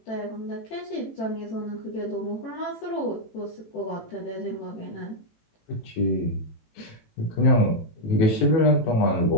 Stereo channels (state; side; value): late; right; 18 ms